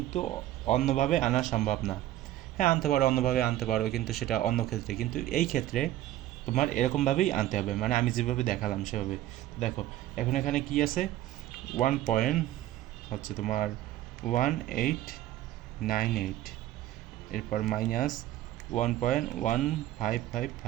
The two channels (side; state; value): left; quieter; 14.0 dB